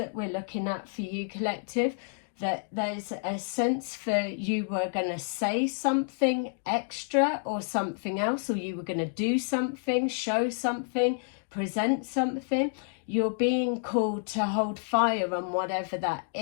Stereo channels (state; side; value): silent; right; digital silence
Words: we're looking at for you, collective, that there's a sense for you were going to say something extra or something else, or you were going to do something, show something, present something. You're being called to hold fire on whatever that